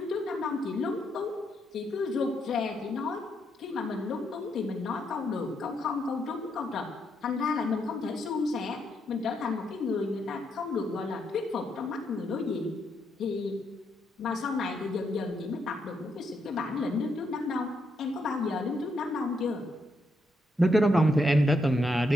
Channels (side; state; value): both; normal; correlation 0.79